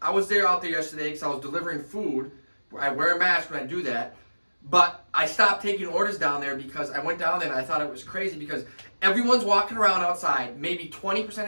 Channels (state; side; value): inverted; both; correlation -1.00